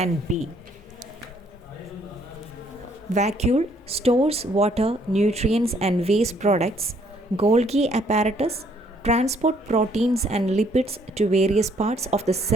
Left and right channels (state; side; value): normal; both; correlation 0.66